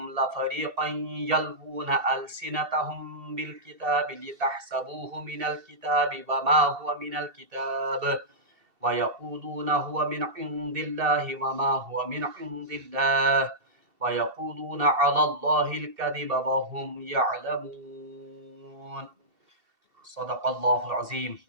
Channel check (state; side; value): late; left; 2.7 ms